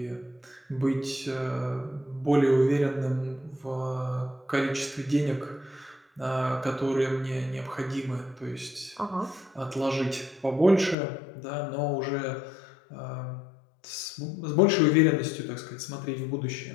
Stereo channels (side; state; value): right; drops out; at 11.0 s